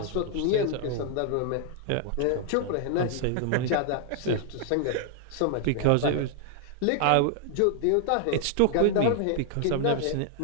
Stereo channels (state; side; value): different; both; correlation 0.00